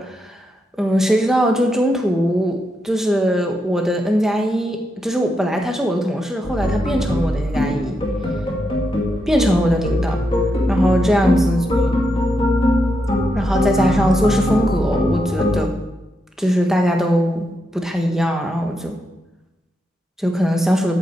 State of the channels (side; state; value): both; normal; correlation 0.83